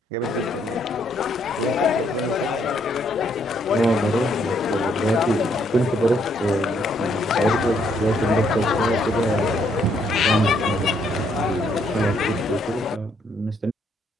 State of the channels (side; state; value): both; normal; correlation 0.71